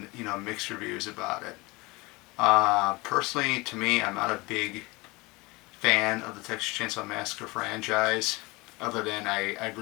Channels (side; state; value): right; quieter; 23.9 dB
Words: mixed reviews about it. Personally, to me, I'm not a big fan of the Texas Chainsaw Massacre franchise. Other than I